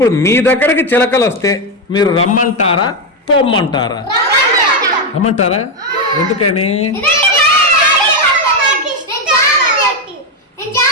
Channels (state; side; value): normal; both; correlation 0.07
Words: మీ దగ్గరికి చిలకలు వస్తే మీరు రమ్మంటారా పొమ్మంటారా? రమ్మంటారా. ఎందుకని?